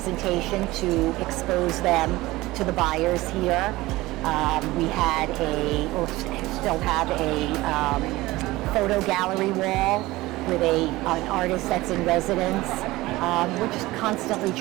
to expose them to the buyers here. We had still have a photo gallery wall with an artist that's in residence. We're just constantly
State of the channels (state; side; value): quieter; left; 19.0 dB